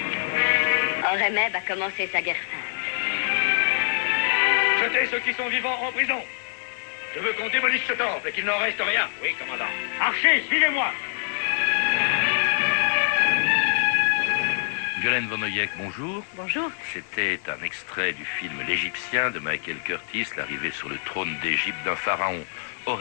Horemheb a commencé sa guerre sainte. Jetez ceux qui sont vivants en prison. Je veux qu'on démolisse ce temple et qu'il n'en reste rien. Oui, commandant. Archers, suivez-moi. Violaine von Oyek, bonjour. Bonjour. C'était un extrait du film L'Égyptien de Michael Curtis, l'arrivée sur le trône d'Égypte d'un pharaon,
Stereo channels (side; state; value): right; silent; 62 dB below the other